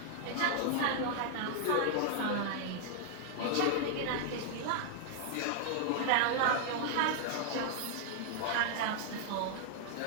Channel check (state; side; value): different; both; correlation 0.00